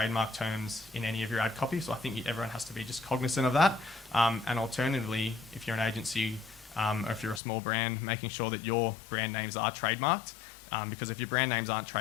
terms in any of your ad copy, so I think everyone has to be just cognizant of that. And alternatively, if you're an agency or if you're a small brand, making sure that your brand names are trademarked, because if your brand names aren't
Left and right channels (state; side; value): drops out; right; at 7.4 s